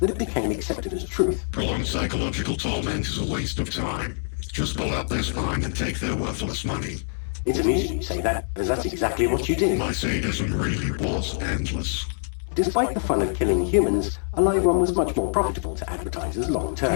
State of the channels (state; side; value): silent; right; 59 dB below the other